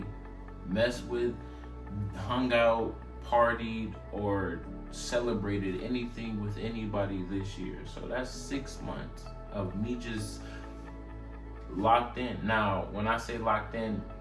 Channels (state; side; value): identical; both; correlation 1.00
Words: messed with, hung out, partied, or celebrated anything with anybody this year. So that's 6 months of me just locked in. Now, when I say locked in,